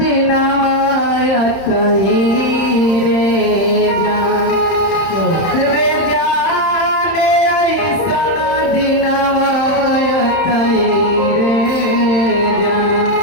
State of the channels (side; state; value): right; late; 31 ms